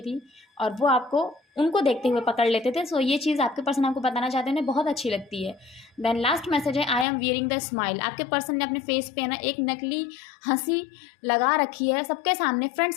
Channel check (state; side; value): drops out; right; at 7.1 s